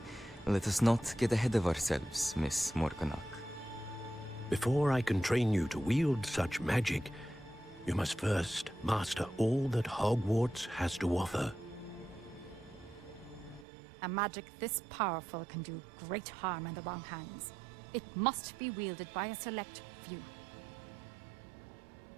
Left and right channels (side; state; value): left; drops out; at 13.7 s